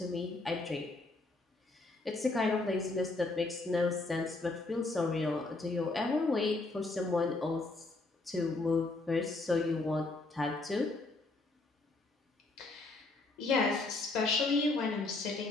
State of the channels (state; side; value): quieter; right; 3.3 dB